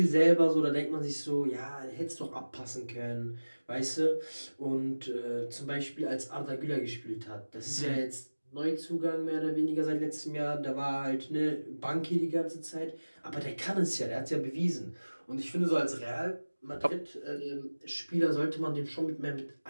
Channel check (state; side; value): inverted; both; correlation -1.00